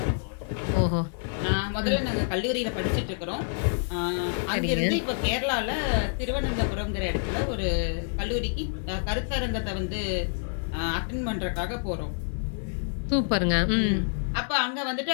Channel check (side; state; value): right; silent; digital silence